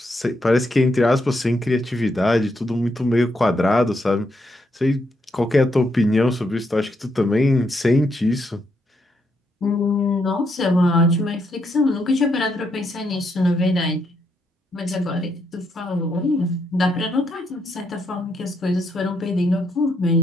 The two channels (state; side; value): normal; both; correlation 0.78